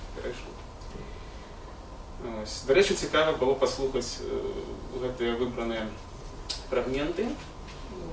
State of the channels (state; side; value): identical; both; correlation 1.00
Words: перейшло. До речі, цікаво було послухати ці вибрані фрагменти.